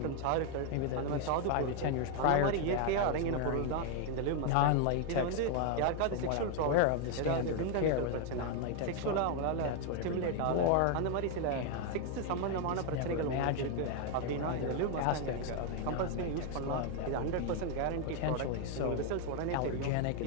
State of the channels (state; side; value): different; both; correlation 0.01